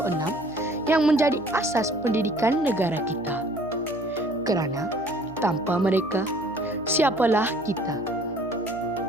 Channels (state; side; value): noise; left; hum, 22 dB below the sound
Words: yang menjadi asas pendidikan negara kita. Kerana tanpa mereka, siapalah kita?